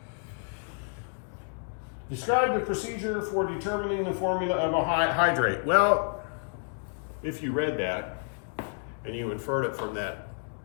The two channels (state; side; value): silent; right; 56 dB below the other